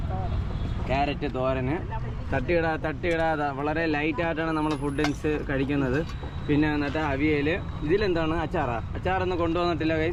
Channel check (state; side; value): identical; both; correlation 1.00